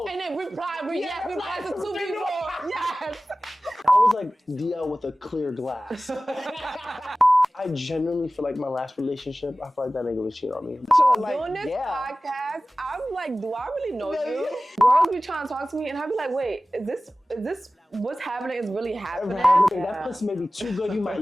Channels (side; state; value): both; normal; correlation 0.96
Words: and then reply to two people. Yes. I was like DL with a clear glass. I genuinely feel like my last relationship, I feel like that nigga was cheating on me. So like, Doing this yeah. podcast, I'm like, do I really know No, you? yeah. Girls be trying to talk to me, and I be like, wait, is this what's happening? Is really happening? That pussy may be too good, you might